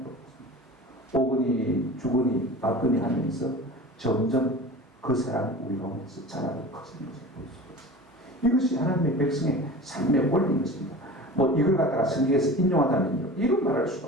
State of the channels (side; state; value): both; normal; correlation 0.36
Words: 오거니 죽으니 받거니 하면서 점점 그 사람이 우리 가운데서 자라고 커지는 것을 볼 수가 있습니다. 이것이 하나님의 백성의 삶의 원리인 것입니다. 뭐 이걸 갖다가 성경에서 인용하다면요, 이런 말할 수가